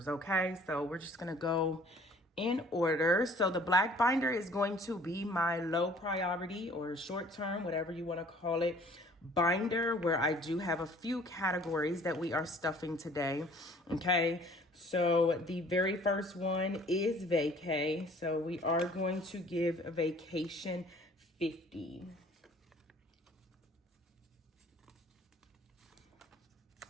okay? So we're just going to go in order. So the black binder is going to be my low priority or short term, whatever you want to call it, binder, where I do have a few categories that we are stuffing today. Okay, so the very first one is vacay. So we are going to give a vacation 50.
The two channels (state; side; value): normal; both; correlation 0.53